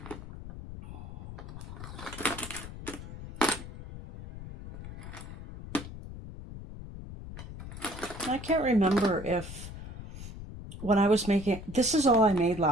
I can't remember if when I was making, this is all I made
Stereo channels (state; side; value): noise; left; rumble, 11 dB below the sound